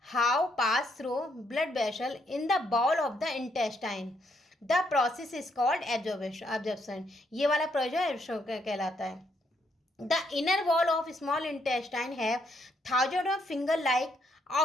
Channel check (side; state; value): both; normal; correlation 0.74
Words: how pass through blood vessel in the ball of the intestine. The process is called absorption, ये वाला प्रोसेस कहलाता है। The inner wall of small intestine have thousand of finger like